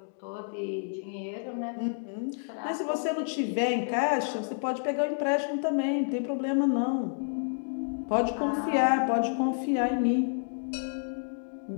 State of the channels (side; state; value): right; silent; digital silence